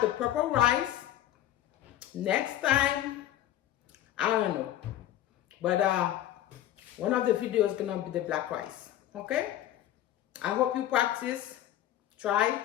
purple rice. Next time, I don't know. But one of the videos is gonna be the black rice. Okay? I hope you practice, try,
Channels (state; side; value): quieter; right; 12.8 dB